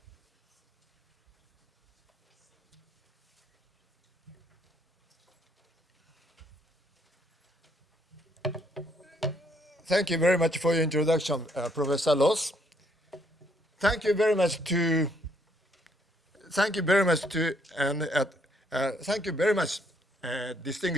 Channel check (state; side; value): normal; both; correlation 0.69